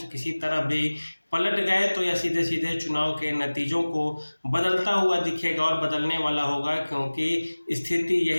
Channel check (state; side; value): inverted; both; correlation -1.00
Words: किसी तरफ भी पलट गए तो यह सीधे सीधे चुनाव के नतीजों को बदलता हुआ दिखेगा और बदलने वाला होगा। क्योंकि स्थिति